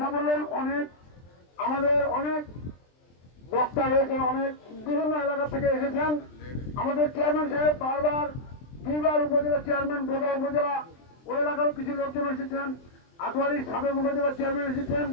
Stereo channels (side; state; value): right; late; 23 ms